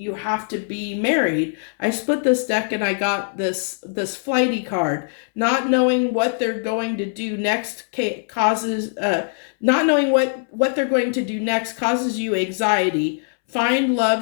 to be married. I split this deck and I got this flighty card. Not knowing what they're going to do next causes, not knowing what they're going to do next causes you anxiety. Find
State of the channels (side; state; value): right; silent; 65 dB below the other